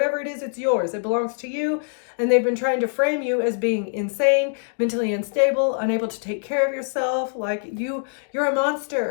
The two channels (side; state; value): right; silent; digital silence